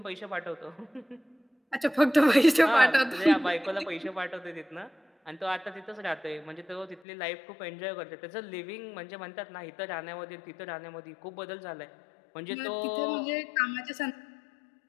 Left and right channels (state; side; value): drops out; right; at 7.0 s